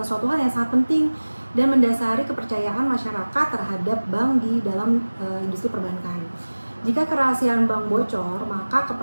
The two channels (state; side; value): inverted; both; correlation -1.00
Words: suatu hal yang sangat penting dan mendasari kepercayaan masyarakat terhadap bank di dalam industri perbankan. Jika kerahasiaan bank bocor, maka